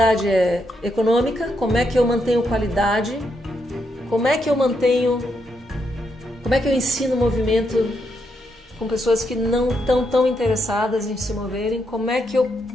é econômica. Como é que eu mantenho qualidade? Como é que eu ensino movimento com pessoas que não estão tão interessadas em se moverem? Como é que eu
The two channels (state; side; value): normal; both; correlation 0.80